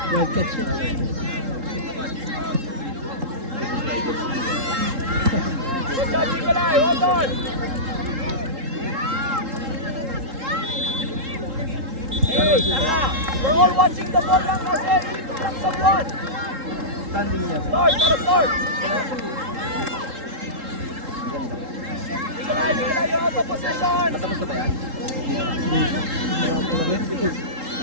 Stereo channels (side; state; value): left; late; 3.7 ms